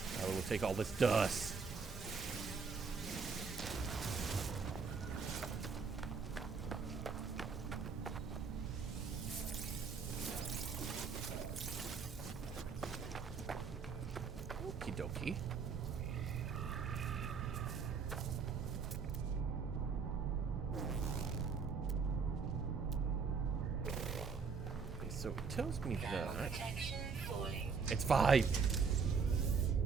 Oh, we'll take all this dust. Okie dokie. So it tells me that it's 5.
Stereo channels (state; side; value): quieter; left; 5.4 dB